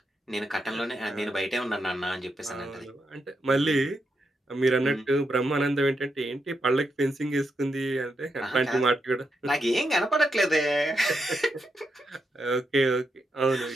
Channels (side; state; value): both; normal; correlation 0.83